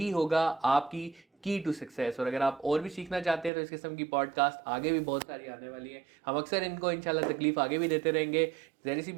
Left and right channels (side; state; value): left; drops out; at 3.5 s